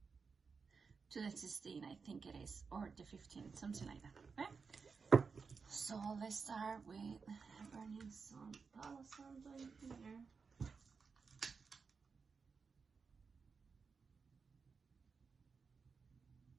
to the 16th, I think it is, or the 15th, something like that. Okay, so let's start with burning some Palo Santo in here.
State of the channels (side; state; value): left; quieter; 5.1 dB